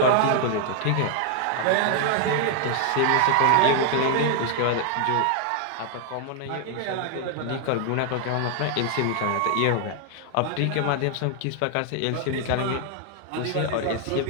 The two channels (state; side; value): different; both; correlation 0.00